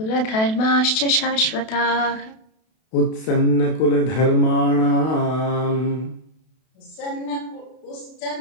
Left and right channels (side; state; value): right; late; 32 ms